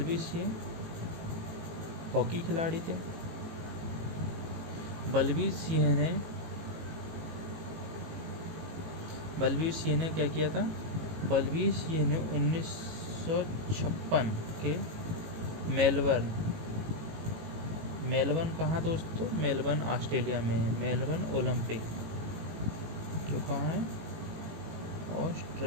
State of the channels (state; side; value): late; left; 18 ms